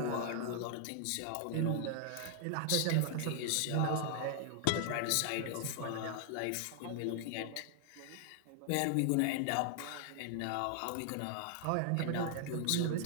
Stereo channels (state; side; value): different; both; correlation 0.00